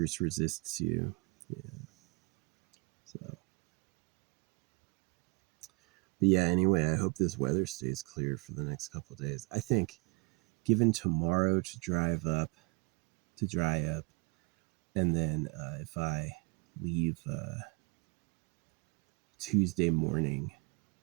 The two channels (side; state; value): left; quieter; 30.7 dB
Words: resists you. Yeah. So, but yeah, anyway, I hope this weather stays clear for the next couple of days. I think given tomorrow to dry up, and then if I leave Tuesday morning